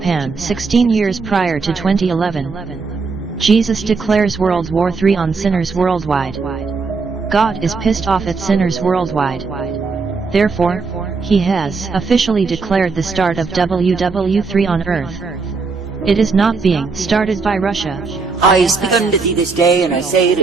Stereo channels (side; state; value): left; quieter; 4.5 dB